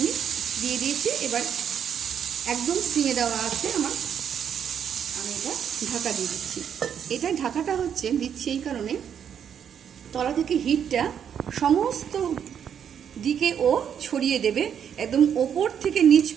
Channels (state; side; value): quieter; left; 8.4 dB